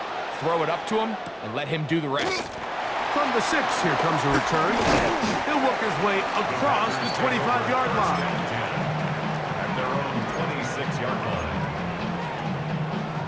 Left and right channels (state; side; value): identical; both; correlation 1.00